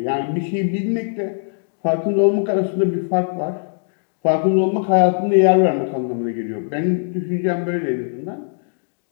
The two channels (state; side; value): silent; right; digital silence